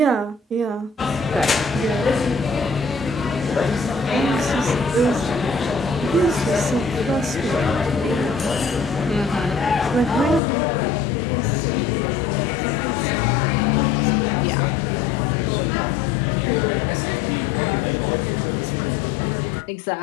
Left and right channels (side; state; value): right; drops out; at 10.4 s